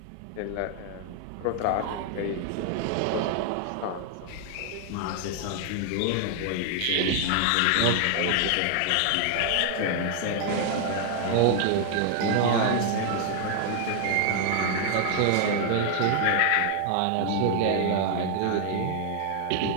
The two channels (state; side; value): different; both; correlation 0.00